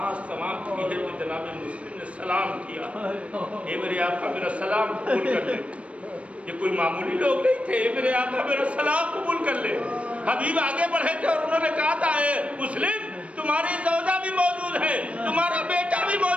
تمام کی ہے تو جناب مسلم نے سلام کیا، اے میرے آقا میرا سلام قبول کر لے۔ یہ کوئی معمولی لوگ نہیں تھے، اے میرے آقا میرا سلام قبول کر لے۔ حبیب آگے بڑھے تھے اور انہوں نے کہا تھا، اے مسلم تمہاری زوجہ بھی موجود ہے، تمہارا بیٹا بھی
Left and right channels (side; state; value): left; late; 0.063 ms